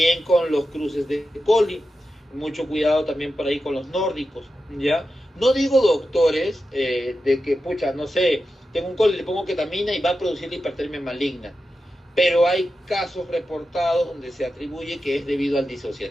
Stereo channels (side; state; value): both; normal; correlation 0.91